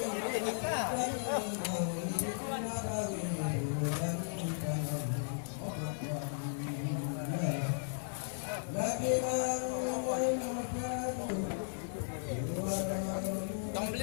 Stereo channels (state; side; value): silent; right; 54 dB below the other